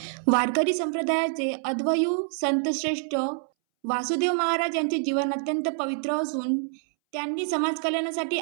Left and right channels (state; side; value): silent; left; 61 dB below the other